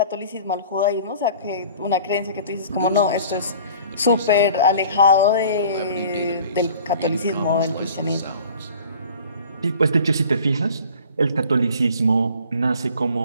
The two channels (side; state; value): both; inverted; correlation -0.47